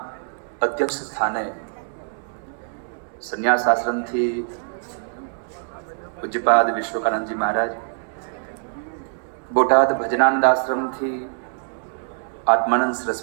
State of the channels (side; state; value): left; silent; 63 dB below the other